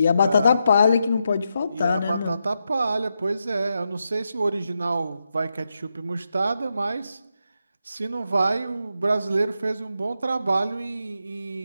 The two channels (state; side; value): inverted; both; correlation -0.85